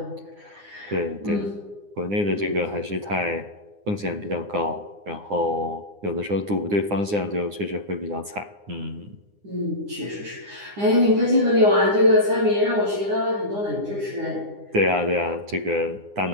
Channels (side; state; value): left; late; 9.8 ms